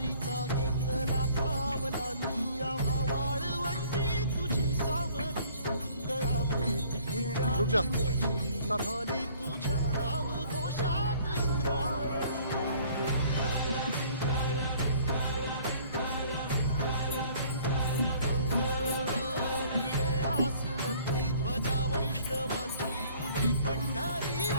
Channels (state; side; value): inverted; both; correlation -0.55